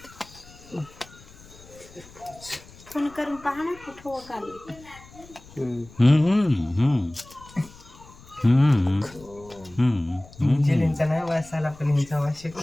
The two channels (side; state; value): left; noise; rumble, 22 dB below the sound